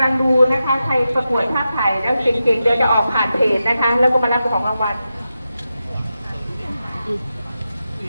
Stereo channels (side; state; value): both; inverted; correlation -0.90